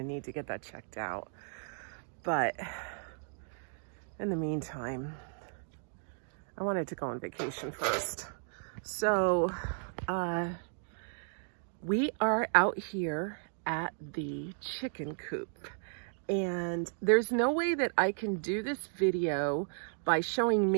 need to get that checked out. But in the meantime, I wanted to go on vacation first. So we are out here at the chicken coop, and there's no way that I can do this video by showing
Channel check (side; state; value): left; silent; digital silence